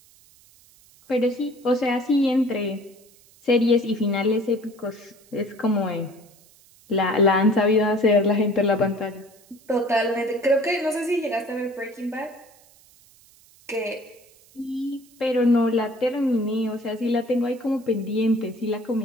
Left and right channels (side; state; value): right; noise; hiss, 28 dB below the sound